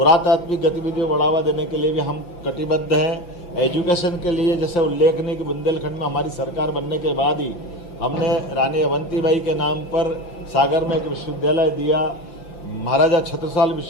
गतिविधियों को बढ़ावा देने के लिए भी हम कटिबद्ध हैं। एजुकेशन के लिए जैसे उल्लेखनीय कि बुंदेलखंड में हमारी सरकार बनने के बाद ही हमने रानी अवंतीबाई के नाम पर सागर में एक विश्वविद्यालय दिया। महाराजा छत्रसाल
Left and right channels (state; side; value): late; right; 5.7 ms